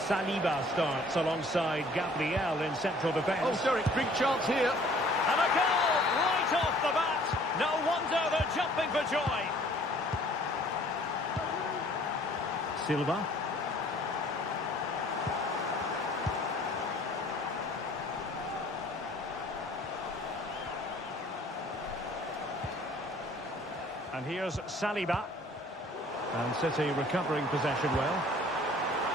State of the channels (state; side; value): normal; both; correlation 0.55